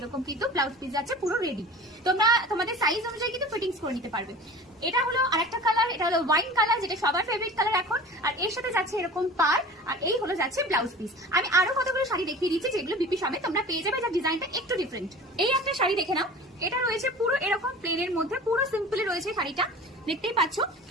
কিন্তু ব্লাউজ পিস আছে পুরো রেডি। তোমরা তোমাদের সাইজ অনুযায়ী কিন্তু ফিটিংস করে নিতে পারবে। এটা হলো আরেকটা কালার, এটা হলো ওয়াইন কালার, যেটা সবার ফেভারিট কালার এখন। আর এর সাথে যাচ্ছে এরকম পার, আর এই হলো যাচ্ছে ব্লাউজ পিস। আমি আরো কতগুলো শাড়ি দেখিয়ে দিচ্ছি যেগুলো বিপি সবে তোমরা পেয়ে যাবে, যার ডিজাইনটা একটু ডিফারেন্ট। এই একটা শাড়ি দেখে নাও, এটা রয়েছে পুরো এরকম প্লেনের মধ্যে, পুরো সিম্পলি রয়েছে শাড়িটা, দেখতেই পাচ্ছ।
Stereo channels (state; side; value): normal; both; correlation 0.39